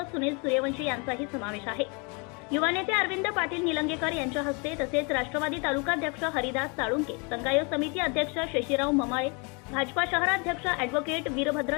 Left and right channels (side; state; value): right; quieter; 32.5 dB